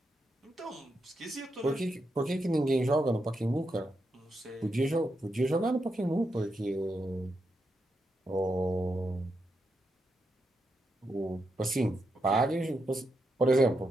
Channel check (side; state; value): both; normal; correlation 0.84